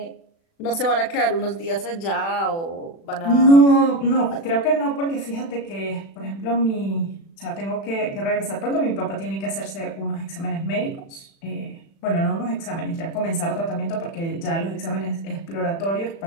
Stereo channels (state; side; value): late; right; 36 ms